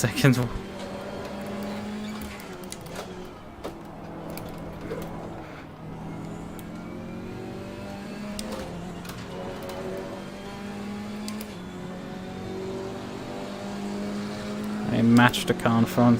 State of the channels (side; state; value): both; identical; correlation 1.00